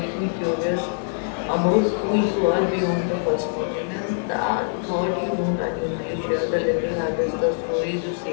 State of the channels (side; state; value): right; silent; digital silence